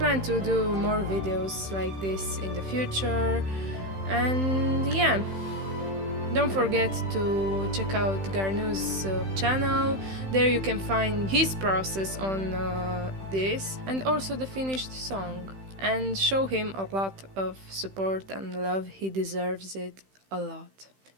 to do more videos like this in the future, and yeah, don't forget to check out Garnu's channel. There you can find his process on this, and also the finished song, and show him a lot of support and love. He deserves it a lot.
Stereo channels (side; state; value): left; late; 15 ms